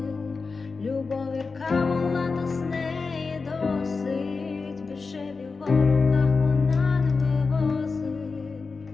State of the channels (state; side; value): quieter; right; 4.4 dB